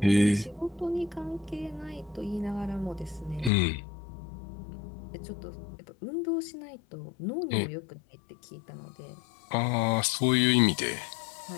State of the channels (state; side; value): drops out; right; at 3.5 s